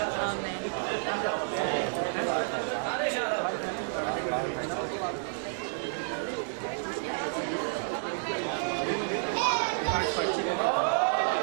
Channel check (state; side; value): silent; left; digital silence